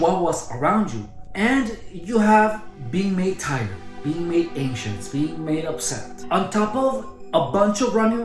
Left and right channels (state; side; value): identical; both; correlation 1.00